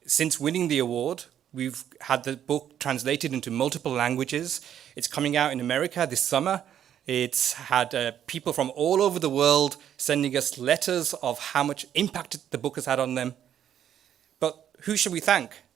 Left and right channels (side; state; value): left; quieter; 10.0 dB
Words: Since winning the award, we've had the book translated into multiple languages. It's coming out in America this summer. It's had people from all over the world sending us letters of how much impact the book has had on them. But who should we thank?